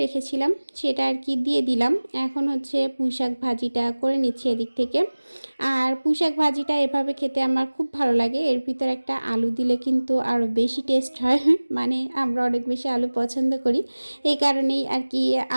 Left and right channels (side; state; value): both; inverted; correlation -1.00